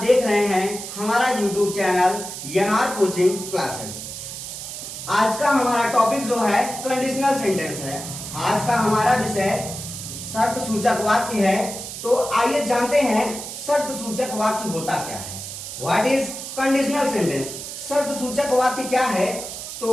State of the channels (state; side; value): noise; right; hiss, 9 dB below the sound